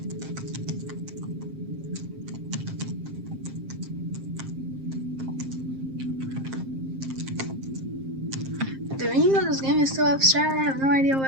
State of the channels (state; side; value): late; left; 7.5 ms